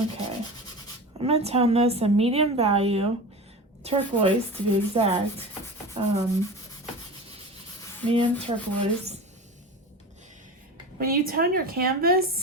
I'm going to tone this a medium value, turquoise to be exact, medium turquoise. When you tone your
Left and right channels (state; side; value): normal; both; correlation 0.30